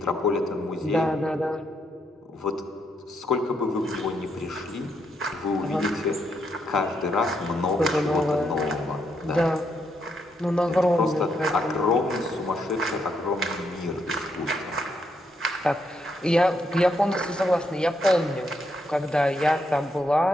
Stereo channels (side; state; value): both; normal; correlation 0.78